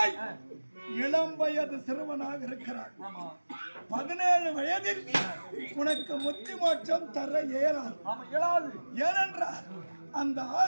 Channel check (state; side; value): inverted; both; correlation -1.00